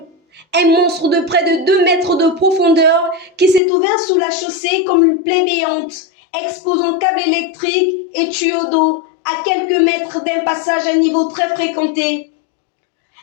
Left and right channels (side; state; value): right; drops out; at 3.6 s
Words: un monstre de près de 2 mètres de profondeur qui s'est ouvert sous la chaussée comme une plaie béante, exposant câbles électriques et tuyaux d'eau à quelques mètres d'un passage à niveau très fréquenté.